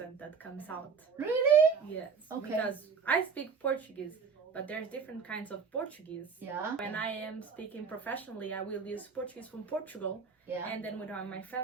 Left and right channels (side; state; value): left; quieter; 5.7 dB